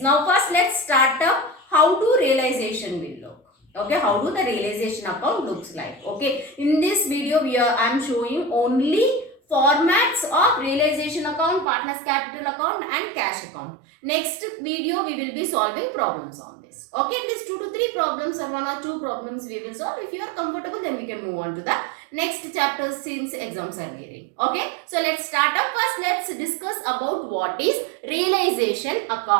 first let's start up how do realization will look. Okay, how do the realization account looks like. Okay, in this video I am showing only formats of realization account, partners capital account and cash account. Next video we will be solving problems on this. Okay, at least 2 to 3 problems or 1 or 2 problems we will solve. If you are comfortable, then we can move on to the next chapter since exams are nearing. Okay, so let's start up. First let's discuss about what is realization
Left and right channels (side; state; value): left; drops out; at 11.7 s